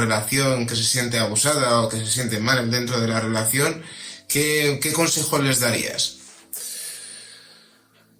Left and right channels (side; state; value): both; identical; correlation 1.00